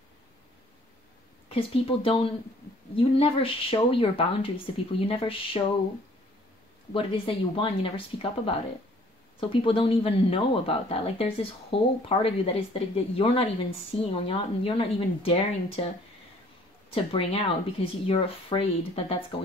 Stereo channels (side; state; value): both; normal; correlation 0.57